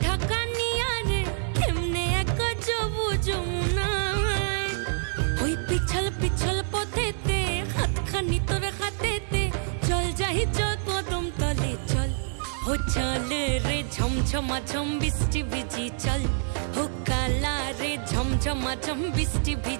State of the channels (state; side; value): silent; left; 60 dB below the other